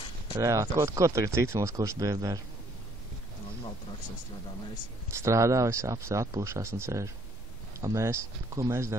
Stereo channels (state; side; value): normal; both; correlation 0.66